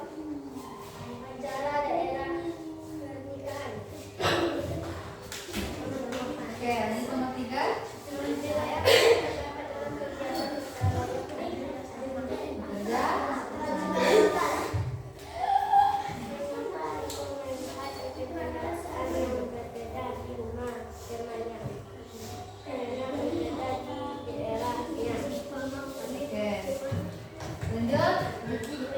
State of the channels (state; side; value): identical; both; correlation 1.00